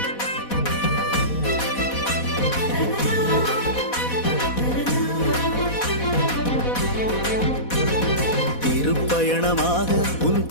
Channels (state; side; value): late; right; 4.1 ms